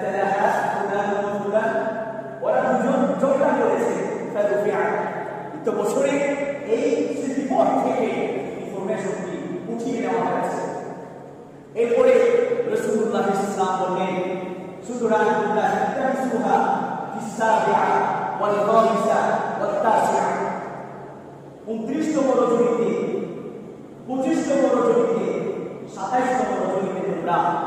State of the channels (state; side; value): identical; both; correlation 1.00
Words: ফুলান ওয়া ফুলান, ওরা দুজন ঝগড়া করেছে। ফারুফিআ, তো বছরে এই স্মৃতিপট থেকে ইনফরমেশনটি উঠিয়ে নেওয়া হয়েছে। এরপরে রাসূলুল্লাহ সাল্লাল্লাহু আলাইহি ওয়াসাল্লাম বললেন, সুতরাং তোমরা তামসুহা ফিস-সাবিআ ওয়াল খামিসা ওয়াত তাসিআ, 29তম রজনীতে, 25তম রজনীতে, 27তম রজনীতে তোমরা